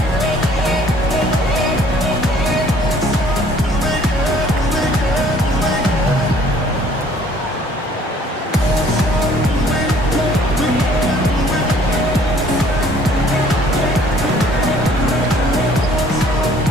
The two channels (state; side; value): normal; both; correlation 0.57